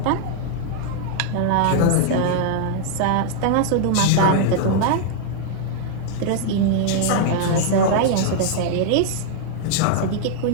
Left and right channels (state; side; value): different; both; correlation -0.01